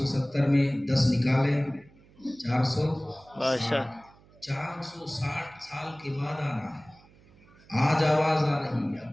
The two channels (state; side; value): noise; right; hum, 27 dB below the sound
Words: میں 10 نکالے، 460 سال کے بعد آنا ہے۔ آج آواز آ رہی ہے